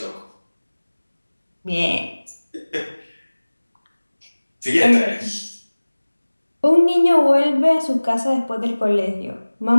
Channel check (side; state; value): both; inverted; correlation -1.00